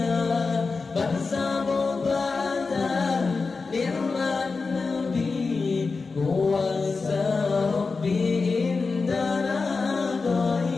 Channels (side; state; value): right; quieter; 4.3 dB